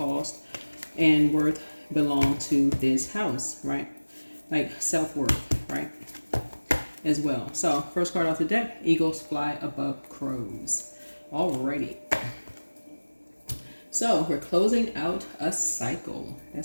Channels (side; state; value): both; inverted; correlation -1.00